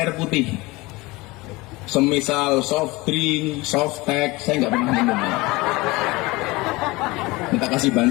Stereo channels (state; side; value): quieter; right; 22.5 dB